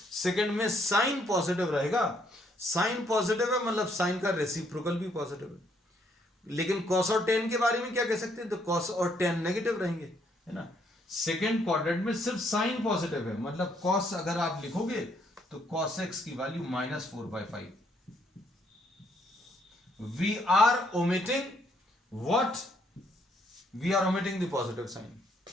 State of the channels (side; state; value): both; normal; correlation 0.70